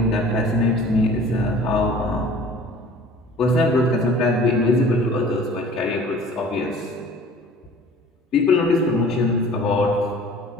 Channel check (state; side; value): normal; both; correlation 0.47